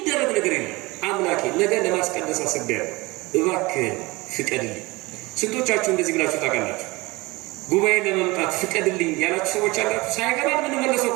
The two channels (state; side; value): quieter; left; 22.8 dB